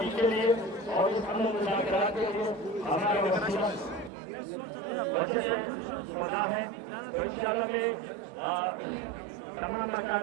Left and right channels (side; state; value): left; drops out; at 4.1 s